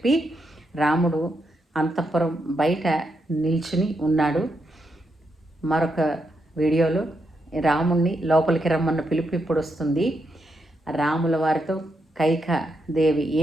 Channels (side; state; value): both; normal; correlation 0.82